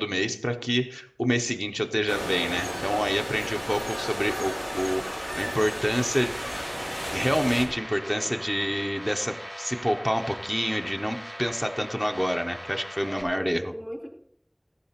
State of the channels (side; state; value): both; identical; correlation 1.00